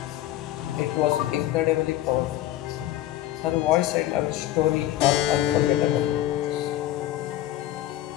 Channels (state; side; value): quieter; right; 14.0 dB